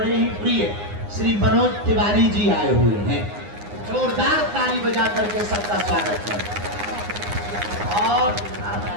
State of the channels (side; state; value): left; late; 9.7 ms